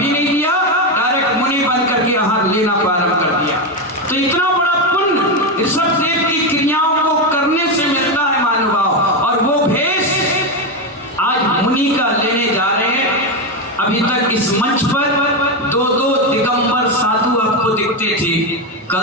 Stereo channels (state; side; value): normal; both; correlation 0.10